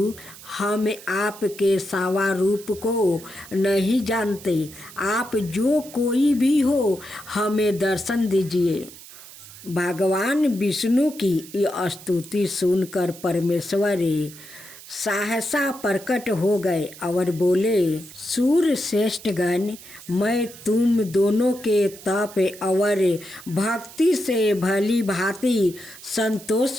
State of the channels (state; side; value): noise; right; hiss, 17 dB below the sound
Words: हम आपके सावा रूप को नहीं जानते, आप जो कोई भी हो हमें दर्शन दीजिए। भगवान विष्णु की यह स्तुति सुनकर परमेश्वर सहसा प्रकट हो गए और बोले, सूर्य श्रेष्ठ गण, मैं तुम दोनों के तप और भक्ति से भली भांति